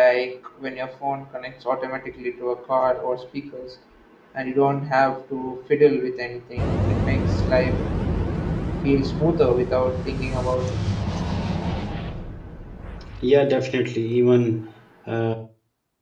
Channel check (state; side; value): identical; both; correlation 1.00